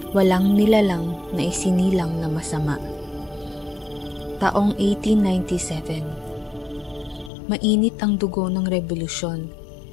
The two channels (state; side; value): drops out; right; at 7.3 s